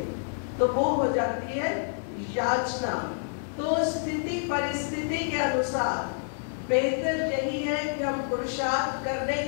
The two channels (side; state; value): right; silent; 59 dB below the other